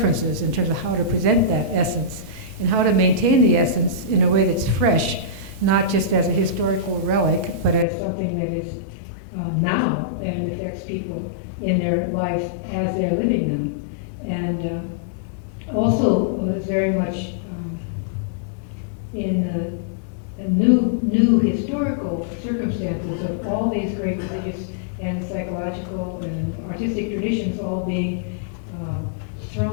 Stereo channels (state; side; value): drops out; right; at 7.9 s